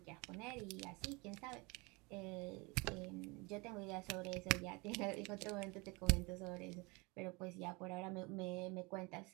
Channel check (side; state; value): left; quieter; 27.1 dB